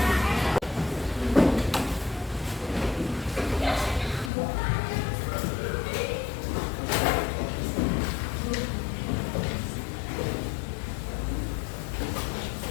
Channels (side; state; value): right; drops out; at 4.3 s